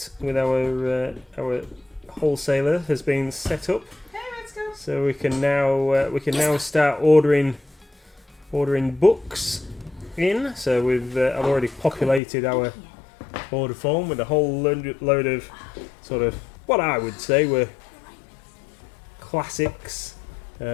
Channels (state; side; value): drops out; right; at 12.2 s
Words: with our wholesaler has been set up. Hey, let's go. So we can now start ordering books in. So I've already populated our order form with a whole load of sort of what I would say were classics,